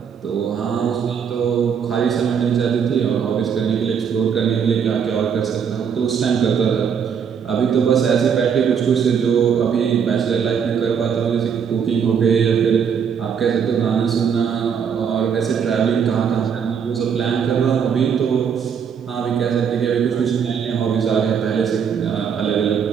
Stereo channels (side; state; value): left; quieter; 7.2 dB